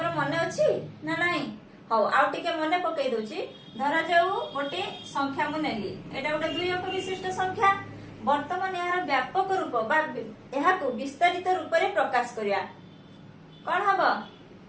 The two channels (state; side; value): identical; both; correlation 1.00